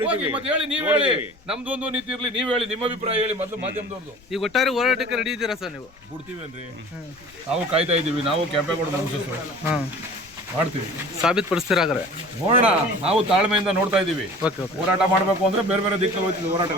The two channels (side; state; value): left; noise; rumble, 27 dB below the sound